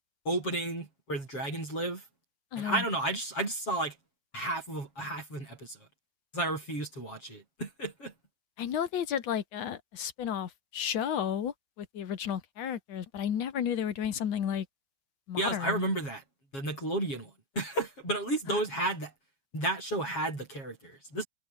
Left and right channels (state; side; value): late; right; 7.3 ms